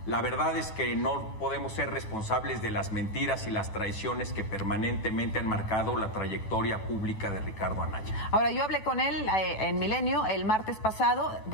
la verdad es que no podemos ser responsables de las mentiras y las traiciones que permanentemente han marcado la trayectoria pública de Ricardo Anaya. Ahora, yo hablé con él en Milenio el martes pasado.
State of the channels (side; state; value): right; late; 9.3 ms